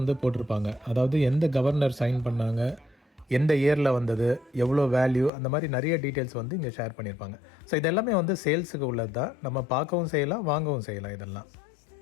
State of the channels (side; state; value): right; drops out; at 5.3 s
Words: போட்டிருப்பாங்க. அதாவது எந்த கவர்னர் சைன் பண்ணாங்க, எந்த இயரில் வந்தது, எவ்வளோ வேல்யூ, அந்த மாதிரி நிறைய டீட்டெயில்ஸ் வந்து இங்கே ஷேர் பண்ணியிருப்பாங்க. ஸோ இதெல்லாமே வந்து சேல்ஸுக்கு உள்ளது தான். நம்ம பார்க்கவும் செய்யலாம், வாங்கவும் செய்யலாம் இதெல்லாம்.